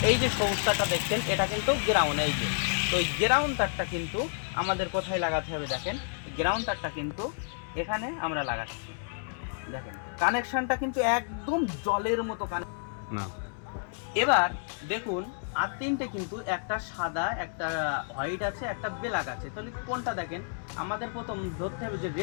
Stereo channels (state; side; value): silent; right; digital silence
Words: এই যে সবুজ তারটা দেখছেন, এটা কিন্তু গ্রাউন্ড। এই যে তো এই গ্রাউন্ড তারটা কিন্তু আমাদের কোথায় লাগাতে হবে দেখেন, গ্রাউন্ড তারটা কিন্তু এখানে আমরা লাগাচ্ছি। দেখেন কানেকশনটা কিন্তু একদম জলের মতো না। এবার দেখুন আর তিনটে কিন্তু, একটা সাদা, একটা হোয়াইট আছে, একটা ব্ল্যাক আছে। তাহলে কোনটা দেখেন, আমাদের প্রথম ধরতে হবে যে